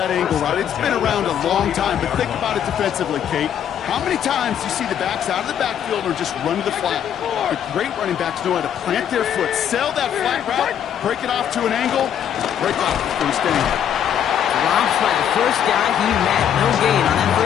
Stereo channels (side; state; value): right; quieter; 9.3 dB